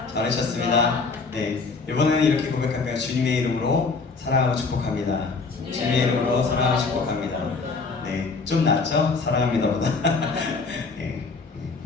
잘 오셨습니다. 네, 이번에는 이렇게 고백할까요? 주님의 이름으로 사랑하고 축복합니다. 주님의 이름으로 사랑하고 축복합니다. 네, 좀 낫죠? 사랑합니다보다. 네.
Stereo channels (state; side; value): quieter; right; 4.3 dB